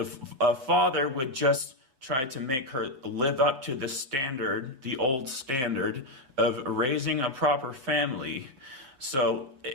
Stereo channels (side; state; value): left; late; 7.6 ms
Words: a father would just try to make her live up to the standard, the old standard of raising a proper family. So